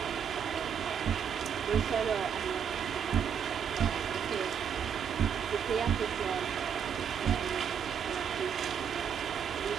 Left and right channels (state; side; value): quieter; left; 7.7 dB